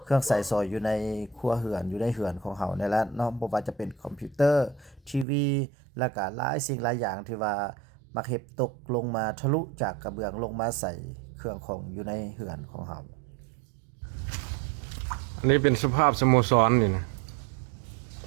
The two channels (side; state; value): left; drops out; at 5.2 s